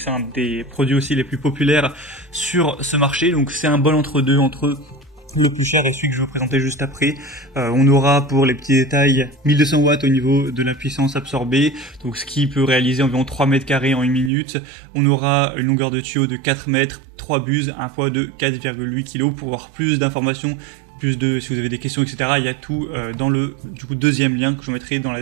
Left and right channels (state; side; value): drops out; left; at 14.3 s